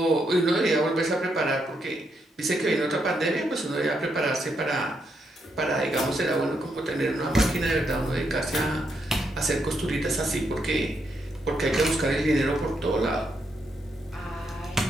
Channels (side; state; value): both; normal; correlation 0.79